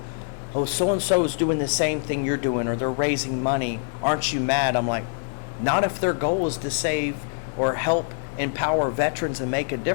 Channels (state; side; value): silent; right; 62 dB below the other